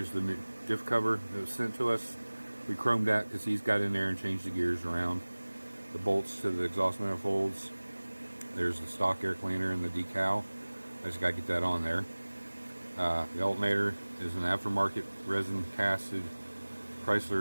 the new diff cover that was sent to us. We chromed that because he's got in there and changed the gears around. The bolts to the exhaust manifolds. There's the stock air cleaner and the decal. I just got to get that on there. The alternator is an aftermarket resin casted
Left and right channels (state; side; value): inverted; both; correlation -1.00